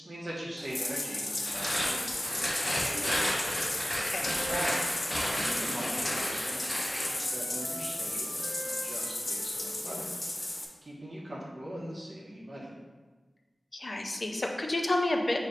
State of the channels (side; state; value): both; normal; correlation 0.96